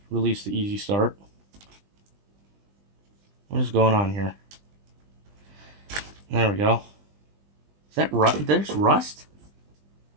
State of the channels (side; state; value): left; late; 20 ms